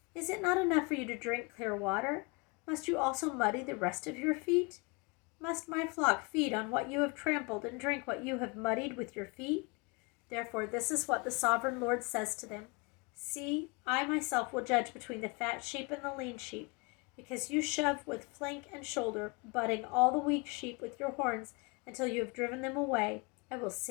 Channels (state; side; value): quieter; right; 29.2 dB